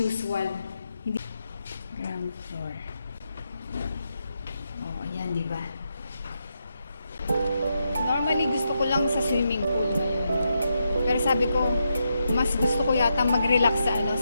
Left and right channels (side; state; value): both; inverted; correlation -0.83